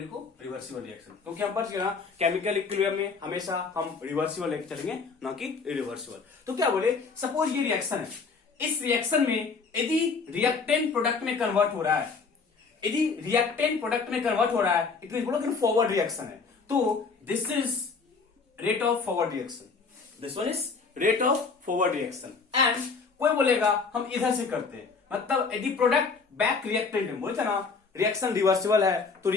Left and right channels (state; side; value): quieter; right; 4.8 dB